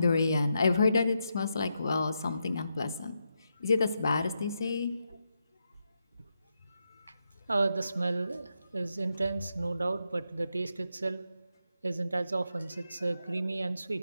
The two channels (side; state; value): both; inverted; correlation -0.84